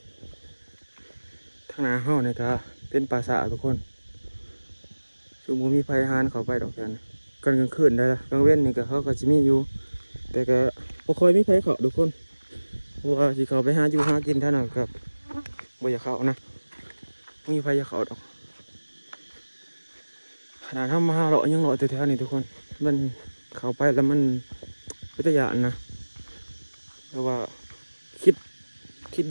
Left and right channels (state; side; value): inverted; both; correlation -1.00